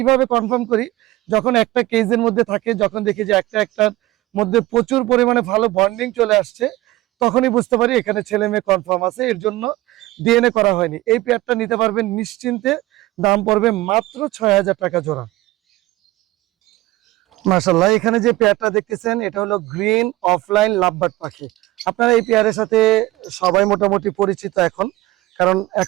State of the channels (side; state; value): left; quieter; 17.9 dB